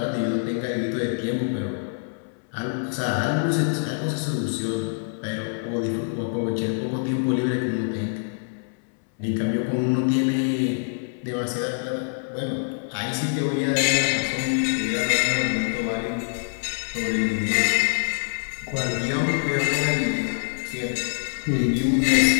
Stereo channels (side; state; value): right; silent; 62 dB below the other